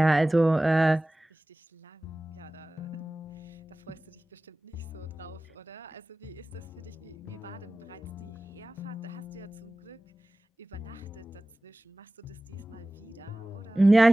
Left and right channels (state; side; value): normal; both; correlation 0.97